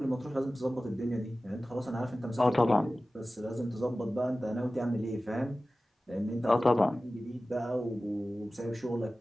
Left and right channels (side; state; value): both; normal; correlation 0.96